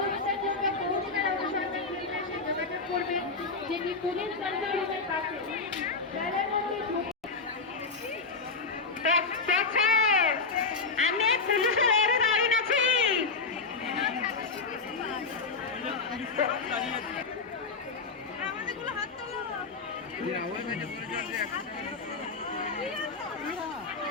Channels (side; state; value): right; quieter; 4.4 dB